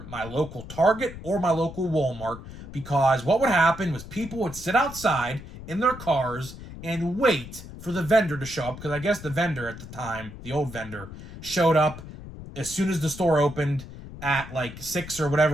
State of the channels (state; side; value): noise; left; rumble, 13 dB below the sound